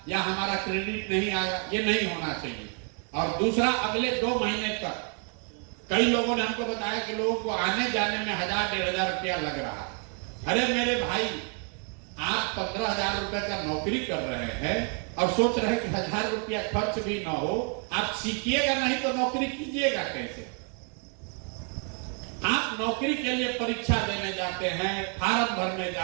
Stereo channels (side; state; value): left; quieter; 39.4 dB